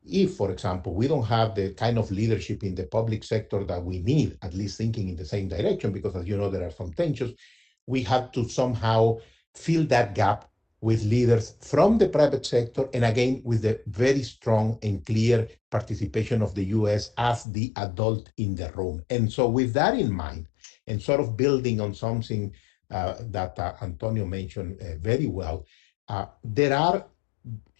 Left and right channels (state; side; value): drops out; right; at 17.4 s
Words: if, for example, we don't have the kind of leadership in the public sector that we need, at least thinking in the same direction, because as you know, there are some tensions, we have to somehow fill that gap with leaders from the private sector, and again, with the very strong and clear participation of the US as the adult in the room. And so with that in mind, and sort of building on something that Antonio mentioned very well, there are